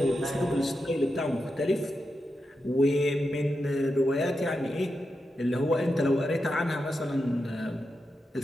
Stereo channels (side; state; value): both; normal; correlation 0.88